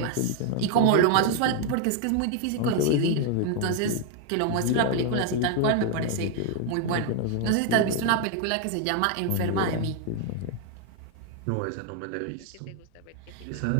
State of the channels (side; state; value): both; different; correlation 0.01